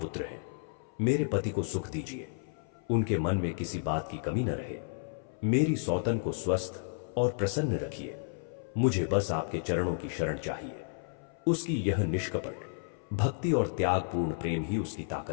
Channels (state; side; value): silent; right; 56 dB below the other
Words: हैं। मेरे पति को सुख दीजिए, उनके मन में किसी बात की कमी न रहे। मेरी सौतन को स्वस्थ और प्रसन्न रखिए। मुझे बस आपके चरणों की शरण चाहिए। उसकी यह निष्कपट भक्ति और त्यागपूर्ण प्रेम ही उसकी